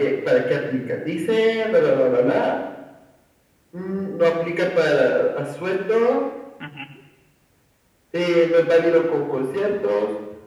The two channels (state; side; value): identical; both; correlation 1.00